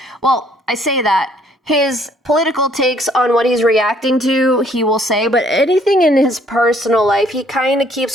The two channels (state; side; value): normal; both; correlation 0.63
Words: well, I say that. His political takes on what he's reacting to, he will say, but anything in his personal life, he kind of keeps